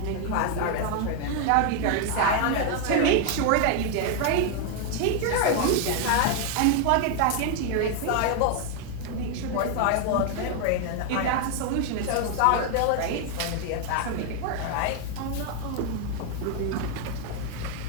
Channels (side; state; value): both; different; correlation 0.01